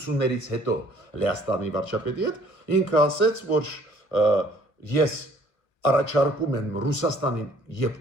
հետո Լեհաստանի վարչապետի հետ, ինքը ասեց, որ ես առաջարկում եմ Ռուսաստանին եւ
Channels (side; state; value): right; late; 1.4 ms